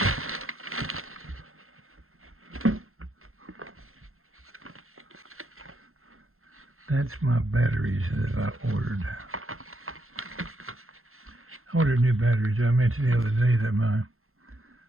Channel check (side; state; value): left; late; 0.62 ms